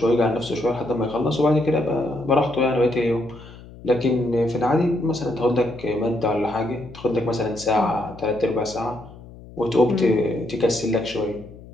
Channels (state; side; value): noise; left; hum, 18 dB below the sound